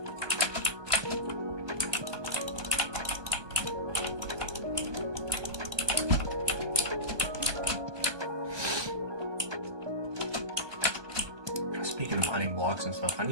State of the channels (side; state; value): left; late; 1.2 ms